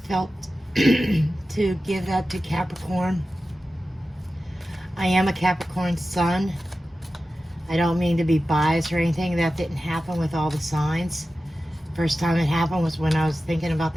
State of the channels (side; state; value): both; normal; correlation 0.94